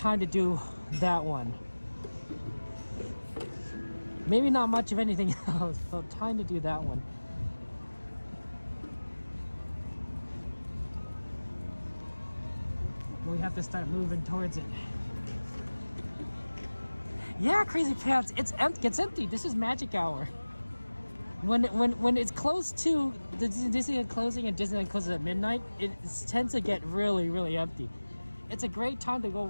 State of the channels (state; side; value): inverted; both; correlation -1.00